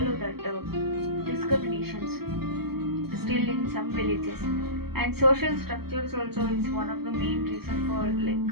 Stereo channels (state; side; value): late; left; 0.96 ms